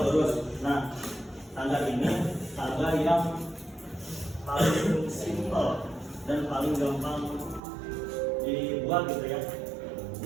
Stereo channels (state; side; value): drops out; left; at 7.6 s